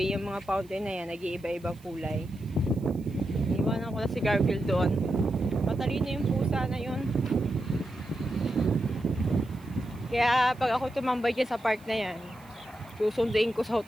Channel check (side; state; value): right; noise; hiss, 28 dB below the sound